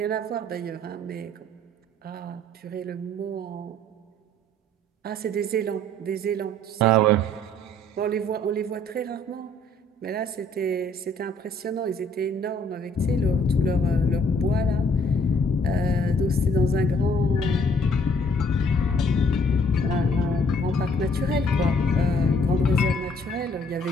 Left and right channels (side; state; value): both; normal; correlation 0.62